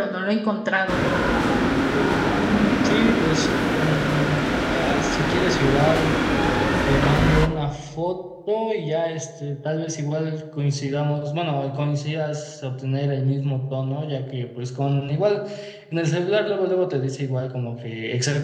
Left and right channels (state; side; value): identical; both; correlation 1.00